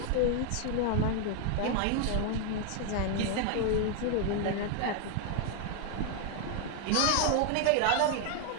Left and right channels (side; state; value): both; different; correlation 0.01